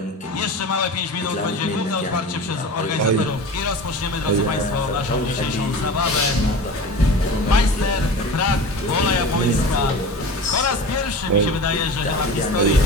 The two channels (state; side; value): normal; both; correlation 0.34